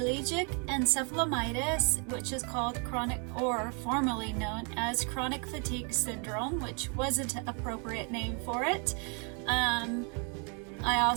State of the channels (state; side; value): quieter; left; 36.7 dB